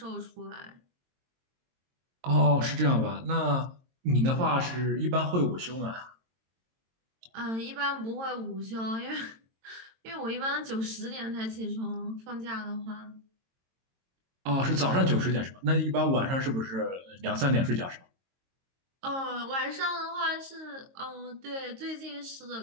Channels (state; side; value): late; left; 22 ms